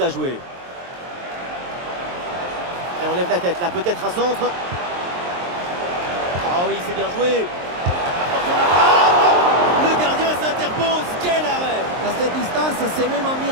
jouer. Et on lève la tête là, peut-être un centre. Ah oui, c'est bien joué. Attention la frappe. Le gardien s'interpose. Quel arrêt! À cette distance, c'est même un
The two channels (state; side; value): late; left; 23 ms